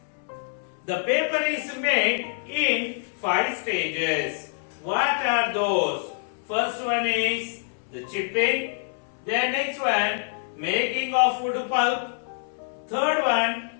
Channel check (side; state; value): right; silent; 61 dB below the other